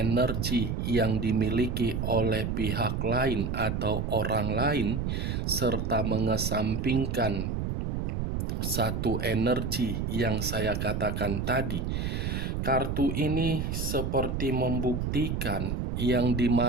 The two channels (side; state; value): right; noise; rumble, 1 dB below the sound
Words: yang dimiliki oleh pihak lain atau orang lain, serta mengesampingkan satu energi yang saya katakan tadi, kartu ini seperti membuktikan yang